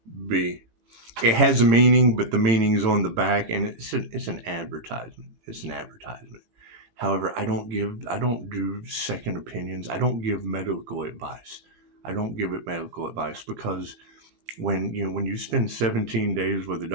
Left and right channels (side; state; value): left; late; 18 ms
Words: It has a meaning, but the meaning's on the back, and it's an advertisement. It's an advertisement. However, I don't do second opinions. I don't give medical advice. I don't give it medical advice because when you spend 17 days with a